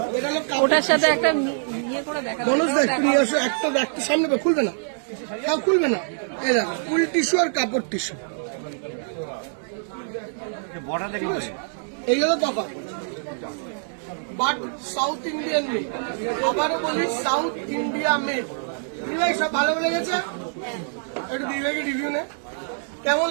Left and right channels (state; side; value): silent; left; digital silence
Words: এটা হলো কাপড়। ওটার সাথে একটা ইয়ে করে দেখা, মনোজ দেখ, নিয়ে আসো একটা, একটা সামনে খুলবে না, খুলবে না, এই দেখো ফুল টিস্যু আর কাপড় টিস্যু, এই হলো তফাৎ। বাট সাউথ ইন্ডিয়ান মেড, আবারও বলি সাউথ ইন্ডিয়া মেড। দিদিভাই সব ভালো লেগেছে? একটু দিদিভাইকে রিভিউ নে, কেমন